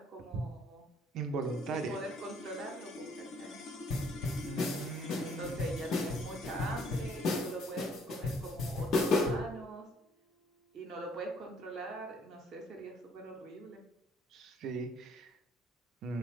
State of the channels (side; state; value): both; normal; correlation 0.63